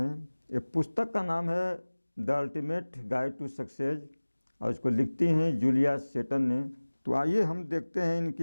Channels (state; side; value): inverted; both; correlation -1.00